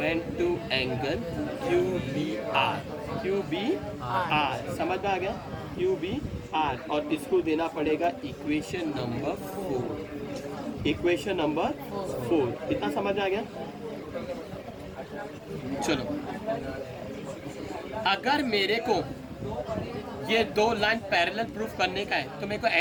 to angle Q B R. Q B R समझ में आ गया? Q B R. और इसको देना पड़ेगा इक्वेशन नंबर 4। इक्वेशन नंबर 4 इतना समझ में आ गया? चलो, अगर मेरे को ये दो लाइन पैरेलल प्रूफ करने का है तो मेरे को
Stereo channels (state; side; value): identical; both; correlation 1.00